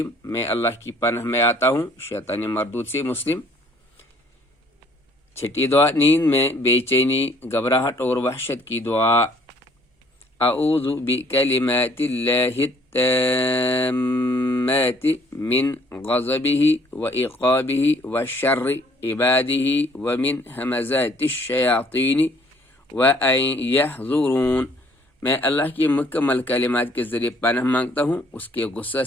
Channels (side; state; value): both; normal; correlation 0.60